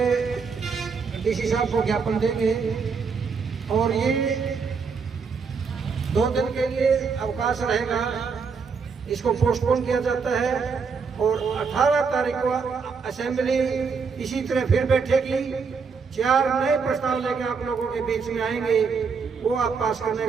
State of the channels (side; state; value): left; quieter; 5.4 dB